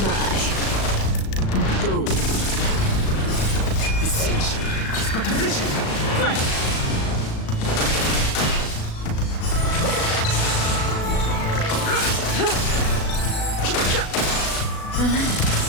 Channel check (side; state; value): right; late; 37 ms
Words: bye. Boom. Essential is but a vision.